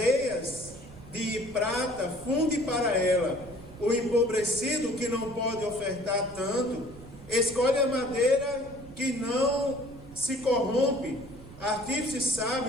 de prata funde para ela. O empobrecido, que não pode ofertar tanto, escolhe a madeira que não se corrompe. Artífice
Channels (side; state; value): right; noise; rumble, 17 dB below the sound